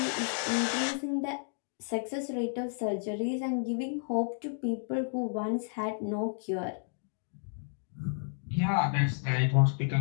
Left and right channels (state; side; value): silent; right; digital silence